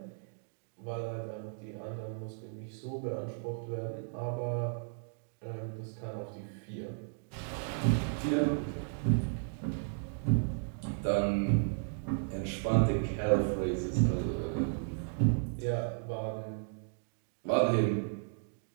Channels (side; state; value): left; silent; digital silence